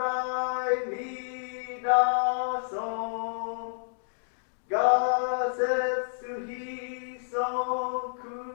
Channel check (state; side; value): silent; right; digital silence